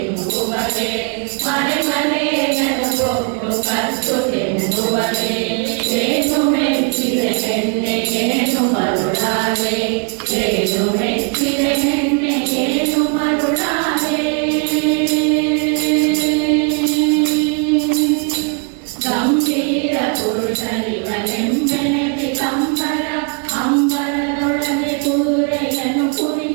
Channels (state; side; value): quieter; left; 39.4 dB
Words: ಮನೆ ಮನೆಯನ್ನು ಕೊಟ್ಟು ಕದ್ದು ತಿಂಬುವರೆ ಏನು ಮೆಚ್ಚಿದೆ ಹೆಣ್ಣೆ ಏನು ಮರುಳಾದೆ ಏನು ಮೆಚ್ಚಿದೆ ಹೆಣ್ಣೆ ಏನು ಮರುಳಾದೆ ಗಂಭೀರ ಪುರುಷನಿವನೆಂಬೆನತಿ ಕಂಬರ ಅಂಬರದೊಳಗೆ ಕುದುರೆಯನ್ನು